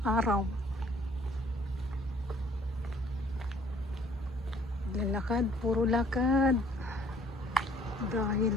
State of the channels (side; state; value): both; normal; correlation 0.59